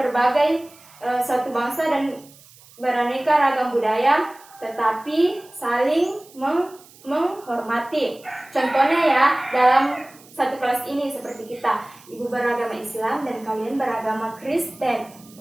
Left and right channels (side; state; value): right; noise; hiss, 24 dB below the sound